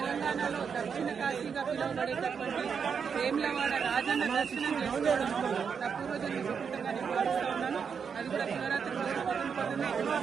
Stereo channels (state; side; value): quieter; left; 6.5 dB